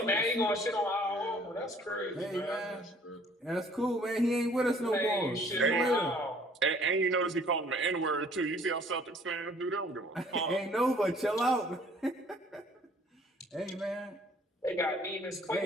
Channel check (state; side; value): normal; both; correlation 0.56